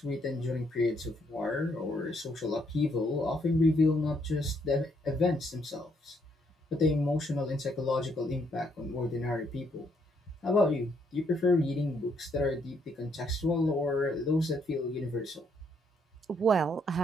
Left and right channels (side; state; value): both; normal; correlation 0.72